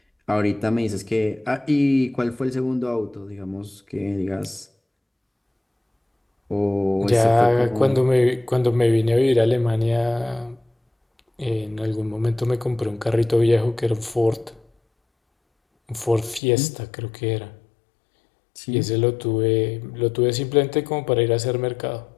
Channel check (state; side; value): drops out; right; at 16.4 s